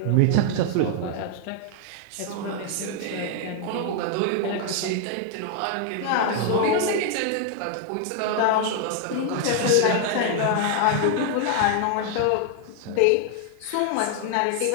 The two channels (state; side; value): different; both; correlation 0.00